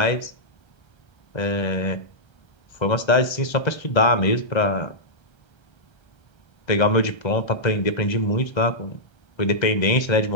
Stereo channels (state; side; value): late; right; 1.3 ms